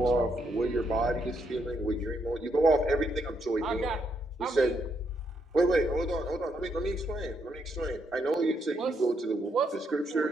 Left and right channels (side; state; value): both; normal; correlation 0.77